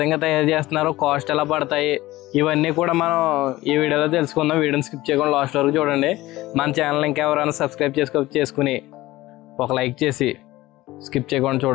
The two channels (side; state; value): right; quieter; 17.8 dB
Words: తయారు చేస్తున్నారు, కాస్ట్ ఎలా పడతాయి, ఇవన్నీ కూడా మనం ఈ వీడియోలో తెలుసుకుందాం. వీడియోని స్కిప్ చేయకుండా లాస్ట్ వరకు చూడండి. మన ఛానల్ ఇంకా ఎవరైనా సబ్స్క్రైబ్ చేసుకుని ఒక లైక్ చేసి స్కిప్ చేయకుండా